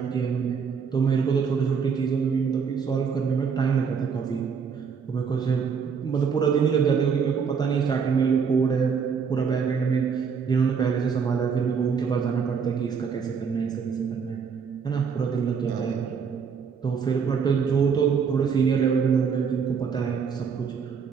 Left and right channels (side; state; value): left; quieter; 6.2 dB